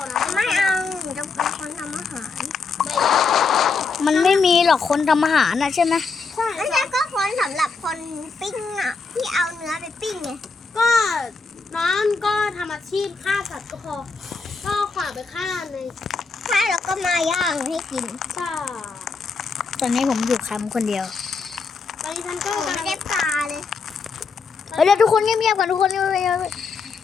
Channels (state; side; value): quieter; right; 4.6 dB